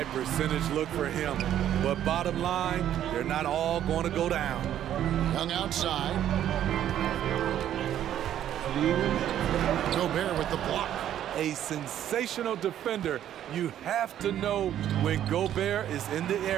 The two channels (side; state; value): left; quieter; 11.1 dB